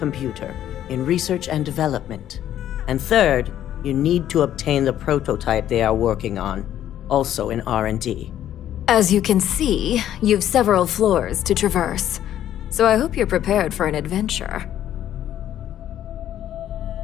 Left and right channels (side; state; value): right; quieter; 11.5 dB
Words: in research and development. And third, you need to obtain the prototype they are working on, also in R&D. As you can see, you've several floors to traverse, so I hope you're prepared for an adventure.